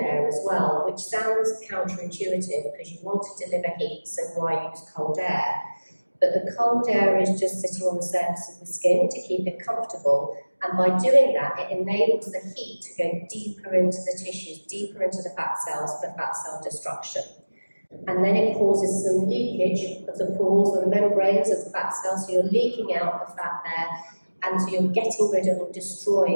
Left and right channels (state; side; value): inverted; both; correlation -1.00